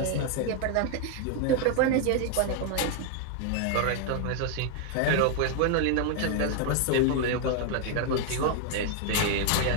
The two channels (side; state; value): both; different; correlation 0.00